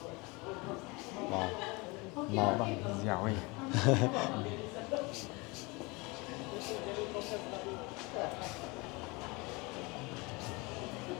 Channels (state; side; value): quieter; right; 26.1 dB